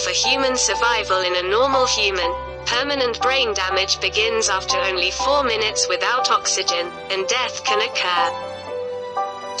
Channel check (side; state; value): both; identical; correlation 1.00